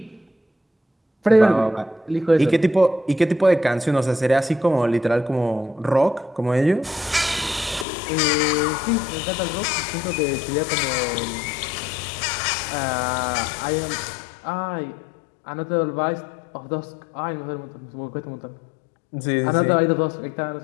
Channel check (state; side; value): drops out; right; at 7.9 s